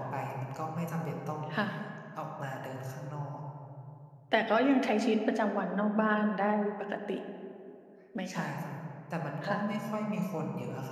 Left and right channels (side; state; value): both; identical; correlation 1.00